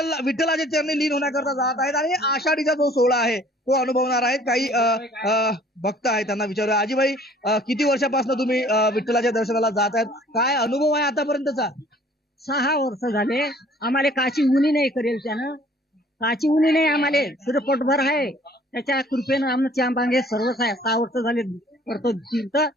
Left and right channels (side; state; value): both; normal; correlation 0.55